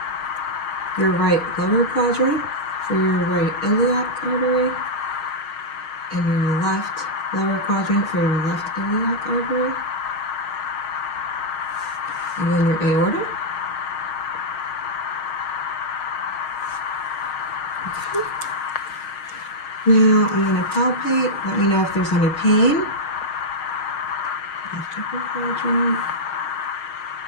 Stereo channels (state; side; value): late; right; 6.4 ms